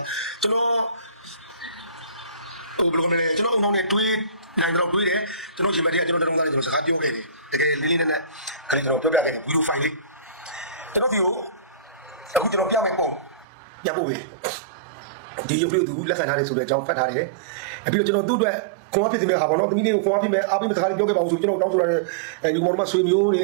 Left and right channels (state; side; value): drops out; left; at 13.5 s